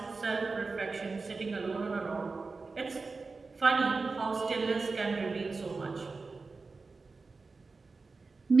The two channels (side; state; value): left; quieter; 4.1 dB